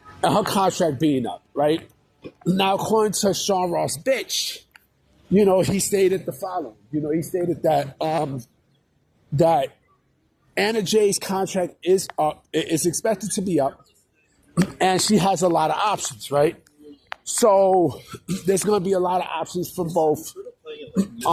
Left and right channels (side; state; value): both; identical; correlation 1.00